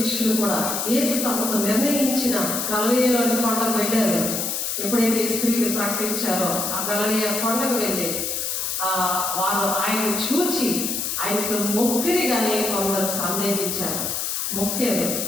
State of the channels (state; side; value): noise; left; hiss, 1 dB below the sound